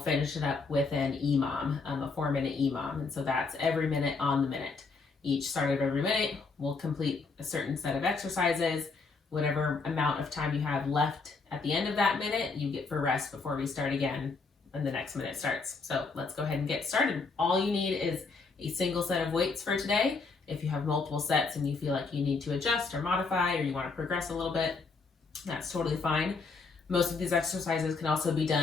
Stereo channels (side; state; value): right; quieter; 4.3 dB